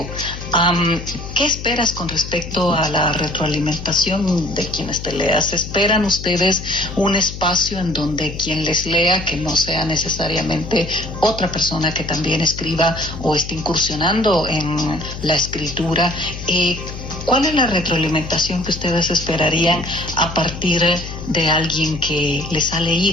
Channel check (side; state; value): left; noise; hum, 10 dB below the sound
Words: ¿Qué esperas con respecto a la retroalimentación de quienes te leas? ¿Esperan ustedes un espacio en donde quien les lea, que no sea necesariamente otra persona que también escriba o esté incursionando en la escritura, ¿cuál es la retroalimentación que ustedes esperarían a partir de alguien que les ha